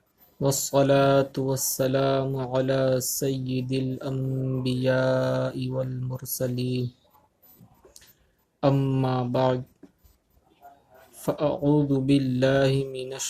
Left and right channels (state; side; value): identical; both; correlation 1.00